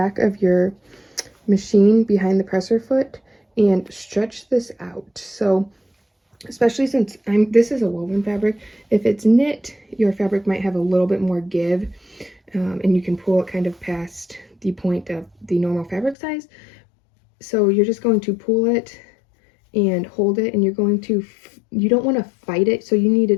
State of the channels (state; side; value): drops out; right; at 16.2 s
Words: of your machine behind the presser foot and stretch this out. So especially since this is a woven fabric, if it's knit, your fabric might have a little bit more give, and you can pull it kind of past the point of the normal fabric size. So you're just going to pull it and hold it, and you're going to, you don't want to fight it, so you need